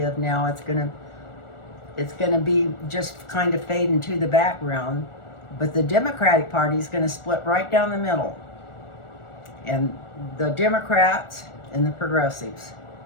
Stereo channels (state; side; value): late; right; 1.4 ms